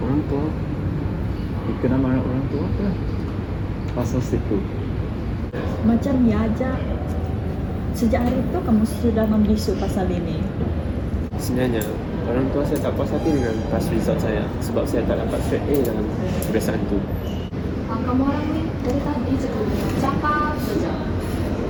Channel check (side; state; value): both; identical; correlation 1.00